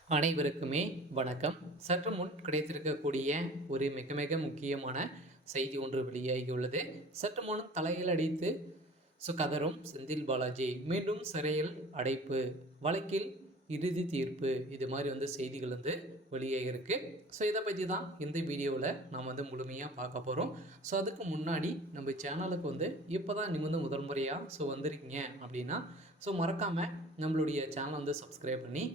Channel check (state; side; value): normal; both; correlation 0.44